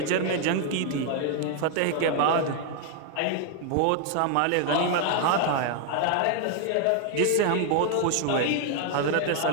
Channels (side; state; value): both; different; correlation 0.00